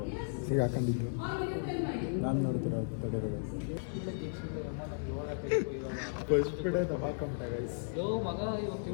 ಸಿಗಾಕೊಂಡಿದ್ದು. ನಾನು ನೋಡ್ತೀರ ತಡೆದ ಫಸ್ಟ್ ಬಿಡೇ ದಬಾಕೊಂಬಿಟ್ಟೆ ಗೈಸ್.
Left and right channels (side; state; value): right; silent; 54 dB below the other